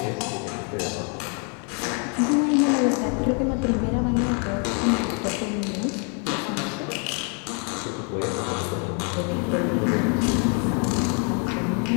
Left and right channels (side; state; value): right; quieter; 38.6 dB